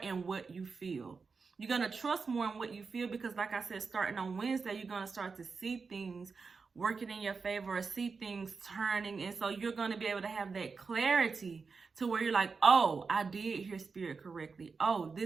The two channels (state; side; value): quieter; left; 4.9 dB